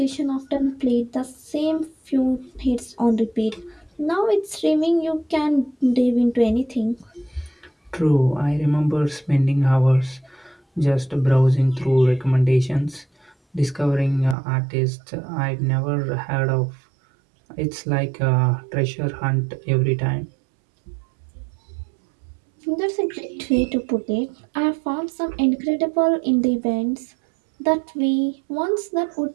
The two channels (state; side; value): drops out; left; at 14.4 s